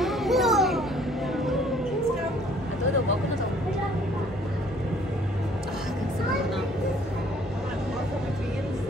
А той е дълбоко надолу. Как се върна.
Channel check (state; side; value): normal; both; correlation 0.58